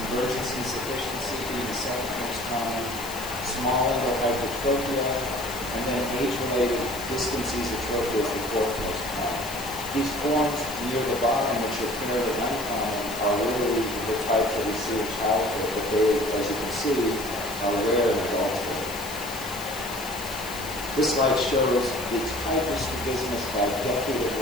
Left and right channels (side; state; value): left; noise; hiss, 12 dB below the sound